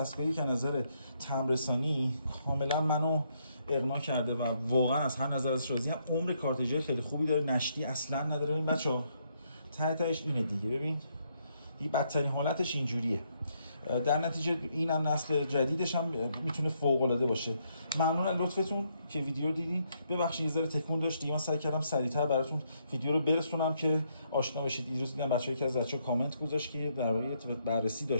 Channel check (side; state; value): both; inverted; correlation -0.74